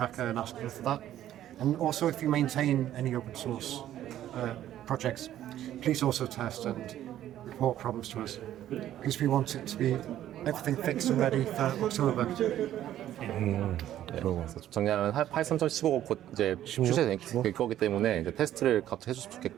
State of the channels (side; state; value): left; quieter; 12.2 dB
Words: and ask them for that. And also, if you maintain any open source projects, please also test and report problems to us, because we want it to be everything fixed and ready for October. 그래서 정리하면 파이썬 3.15가 곧 이제 출시될 거기 때문에 이제 테스트를 같이 해줬으면